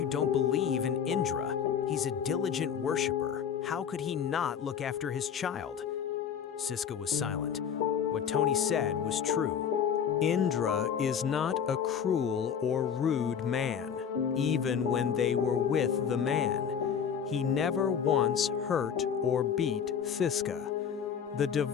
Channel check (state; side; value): quieter; right; 7.7 dB